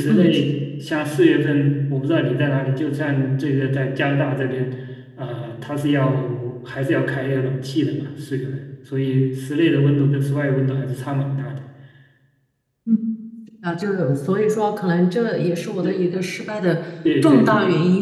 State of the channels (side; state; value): both; identical; correlation 1.00